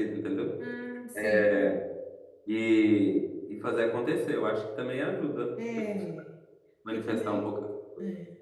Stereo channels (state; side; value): identical; both; correlation 1.00